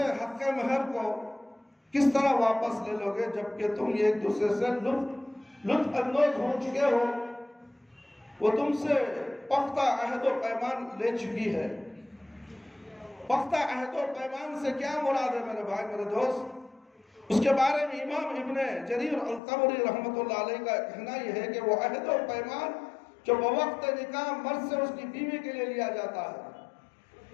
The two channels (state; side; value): drops out; right; at 19.4 s